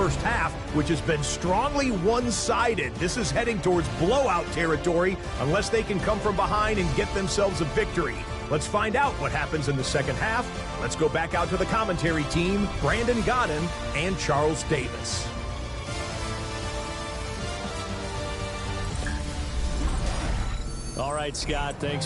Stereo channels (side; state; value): both; identical; correlation 1.00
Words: half, which has been strongly one-sided. This is heading towards blowout territory unless they can come from behind and get themselves a victory. Let's find out what happens in the second half. Let's go back out to the commentary team, Brandon Godden and Charles Davis. All right, Scott, thanks